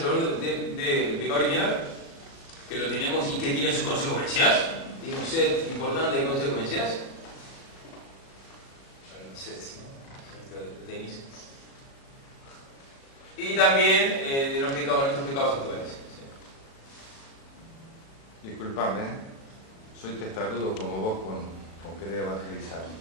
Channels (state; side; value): late; right; 37 ms